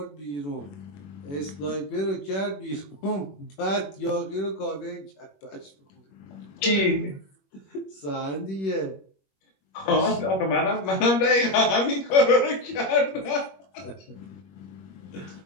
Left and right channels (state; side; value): late; right; 21 ms